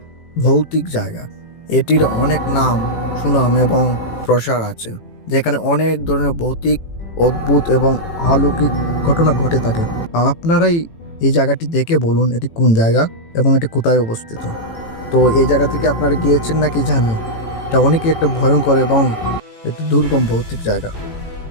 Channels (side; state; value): right; late; 18 ms